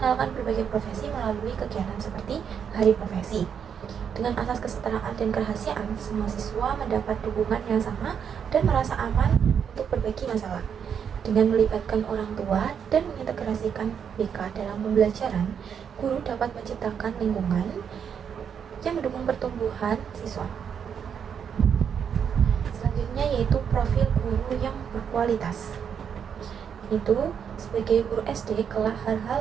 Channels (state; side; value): quieter; left; 7.6 dB